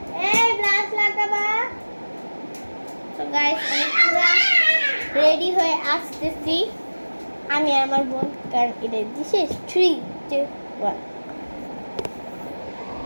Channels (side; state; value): both; inverted; correlation -1.00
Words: এই ব্রাশ লাগাবা। তো গাইস আমি পুরো রেডি হয়ে আসতেছি, আমি আর আমার বোন, কারণ এটা দিছে 3 2 1।